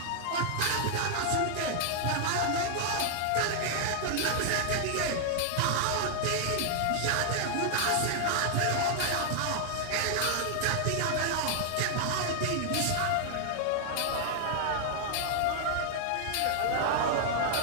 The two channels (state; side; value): different; both; correlation 0.00